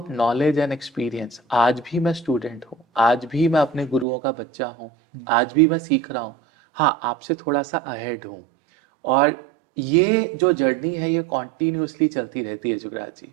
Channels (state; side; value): drops out; left; at 4.0 s